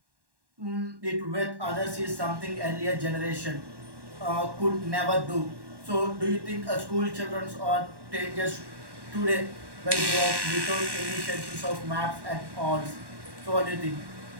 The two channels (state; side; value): late; left; 1.1 ms